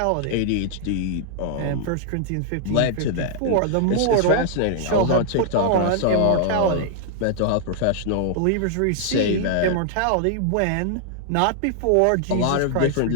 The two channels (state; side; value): different; both; correlation -0.01